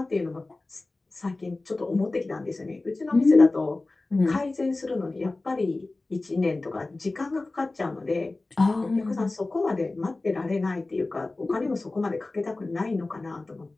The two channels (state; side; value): quieter; right; 3.2 dB